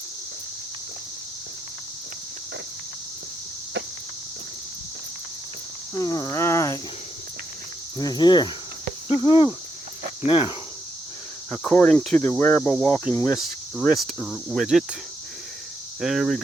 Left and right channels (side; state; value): both; normal; correlation 0.80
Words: All right, we're here. Woohoo! Now, according to the wearable walking wrist widget, there we